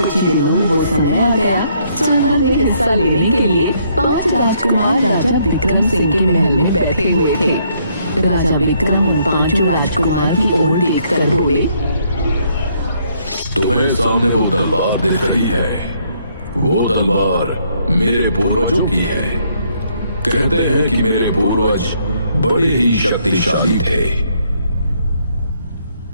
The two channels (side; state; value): both; inverted; correlation -0.70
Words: ही दिनों में वो समय आ गया। स्वयंवर में हिस्सा लेने के लिए 5 राजकुमार राजा विक्रम सिंह के महल में बैठे हुए थे। राजा विक्रम उन 5 राजकुमार की ओर देखकर बोले, तुम्हें सामने वो तलवार दिख रही है, वो तलवार मेरे पूर्वजों की है। कहते हैं कि मेरे पूर्वज बड़े ही शक्तिशाली थे।